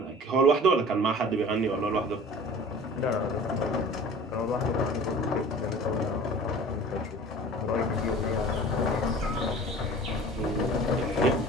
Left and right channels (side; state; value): both; normal; correlation 0.43